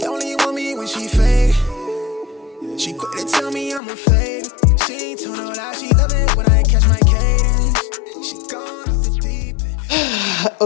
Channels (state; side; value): drops out; right; at 3.8 s